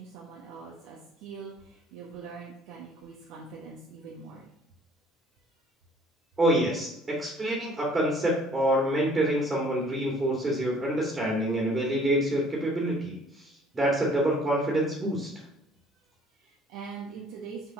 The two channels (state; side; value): normal; both; correlation 0.57